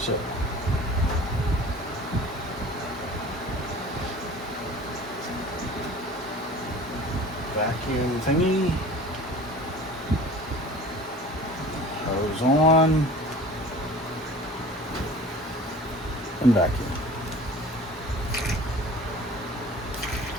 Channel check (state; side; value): normal; both; correlation 0.43